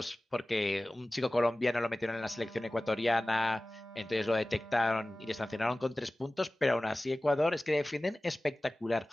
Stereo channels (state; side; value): normal; both; correlation 0.97